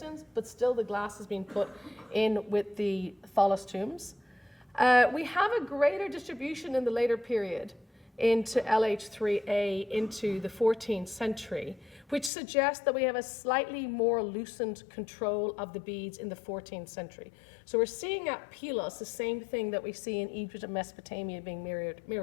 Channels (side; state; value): right; drops out; at 12.3 s